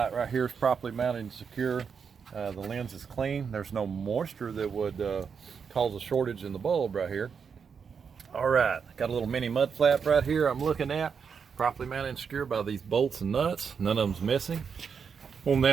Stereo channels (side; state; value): left; quieter; 6.3 dB